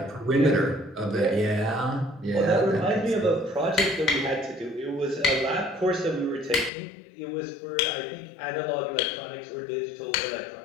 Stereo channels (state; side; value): drops out; right; at 6.7 s